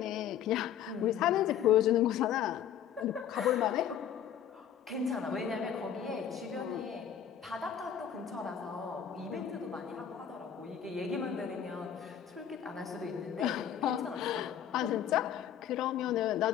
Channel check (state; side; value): quieter; right; 9.4 dB